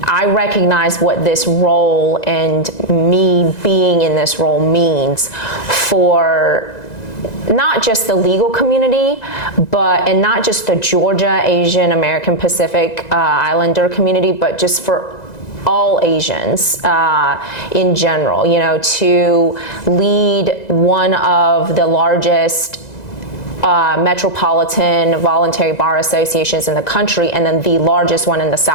I recognize what this role and me being in this role means for not just the legal community, and not just the Georgia, Asian, American Pacific Islander community, but just for all Asians in general, you know, to lead one of the largest metropolitan voluntary bar associations in the country, and then the largest one in the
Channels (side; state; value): right; late; 1.9 ms